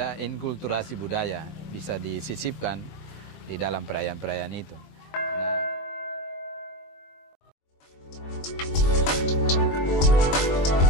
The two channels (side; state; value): right; late; 22 ms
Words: inkulturasi budaya, bisa disisipkan di dalam perayaan-perayaan itu.